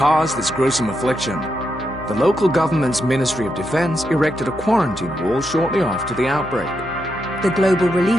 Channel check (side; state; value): left; noise; hum, 18 dB below the sound